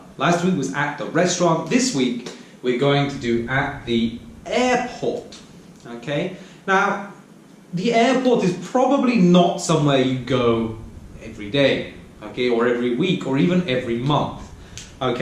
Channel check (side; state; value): both; identical; correlation 1.00